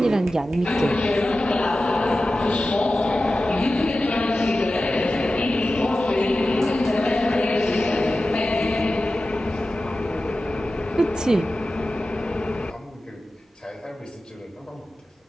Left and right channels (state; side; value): normal; both; correlation 0.94